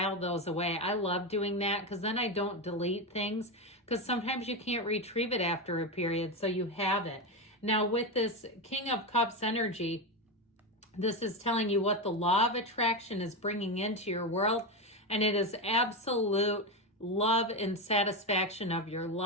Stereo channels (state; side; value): normal; both; correlation 0.13